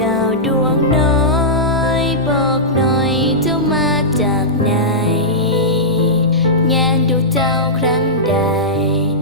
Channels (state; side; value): normal; both; correlation -0.13